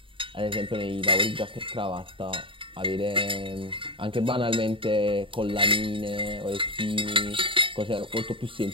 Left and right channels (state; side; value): late; left; 0.25 ms